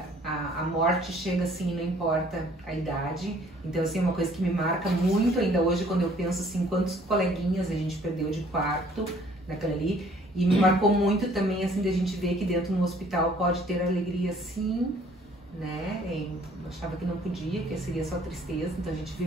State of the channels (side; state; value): both; normal; correlation 0.58